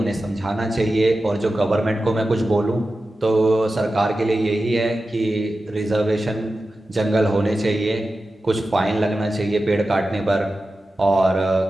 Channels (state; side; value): normal; both; correlation 0.93